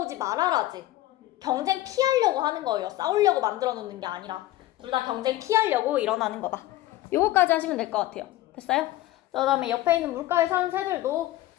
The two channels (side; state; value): right; quieter; 15.8 dB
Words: 말아라지. 경쟁 피하려고 하는 거예요. 싸우려고 만들어 놓는 게 아니라. 둘 다 경쟁 피하려고 일어나는 거다. 요거까지 하시면 될 것 같아요. 됐어요? 그 다음에 옆에 있는 물가에 사는 새들도